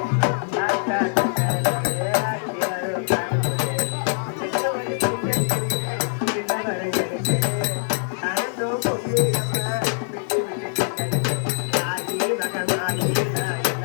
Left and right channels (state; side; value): silent; right; 63 dB below the other